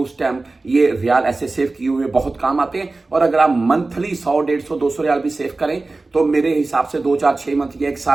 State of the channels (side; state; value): left; quieter; 3.4 dB